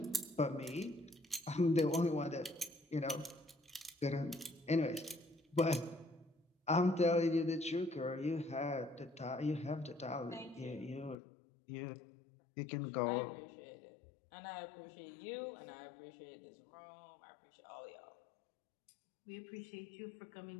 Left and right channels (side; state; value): right; drops out; at 11.2 s